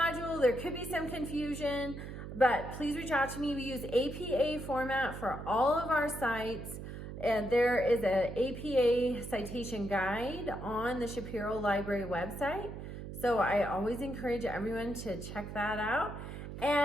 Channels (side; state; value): right; noise; hum, 9 dB below the sound